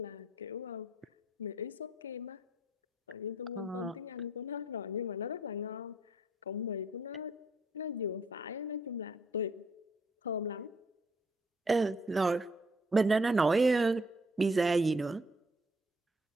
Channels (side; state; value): both; normal; correlation 0.67